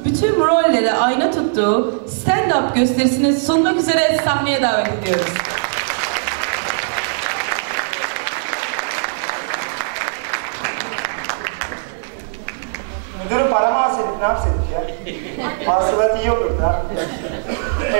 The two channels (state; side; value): silent; left; digital silence